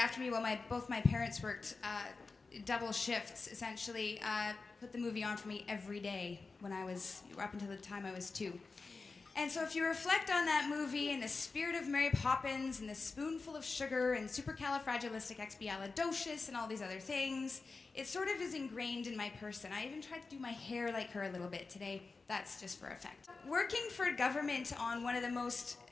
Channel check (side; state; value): right; quieter; 4.1 dB